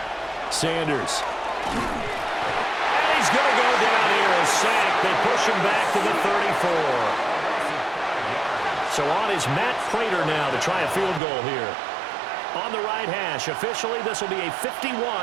Sanders. And he's going to go down here, a sack. They push him back to the 34. So on is Matt Prater now to try a field goal here. On the right hash. Officially, this will be a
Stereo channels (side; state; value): left; drops out; at 11.2 s